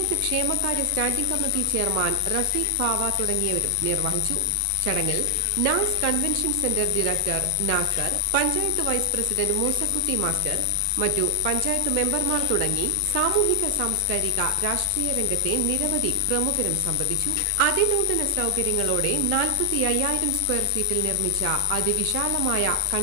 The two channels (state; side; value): different; both; correlation 0.00